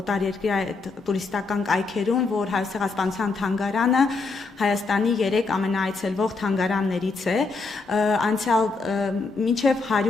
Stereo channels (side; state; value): right; quieter; 4.0 dB